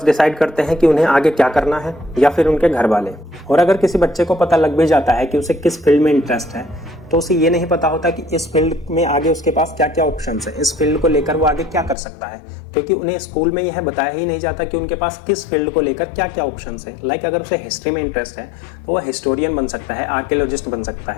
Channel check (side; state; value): right; drops out; at 12.0 s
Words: डिसाइड करते हैं कि उन्हें आगे क्या करना है या फिर उनके घर वाले। और अगर किसी बच्चे को पता लग भी जाता है कि उसे किस फील्ड में इंटरेस्ट है तो उसे ये नहीं पता होता कि इस फील्ड में आगे उसके पास क्या क्या ऑप्शंस है, इस फील्ड को लेकर वो आगे क्या कर सकता है, क्योंकि उन्हें स्कूल में यह बताया ही नहीं जाता कि उनके पास किस फील्ड को लेकर क्या क्या ऑप्शंस है। लाइक अगर उसे हिस्ट्री में इंटरेस्ट है तो वह हिस्टोरियन बन सकता है, आर्कियोलॉजिस्ट बन सकता